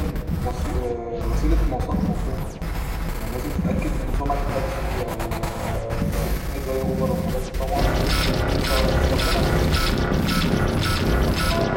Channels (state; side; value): identical; both; correlation 1.00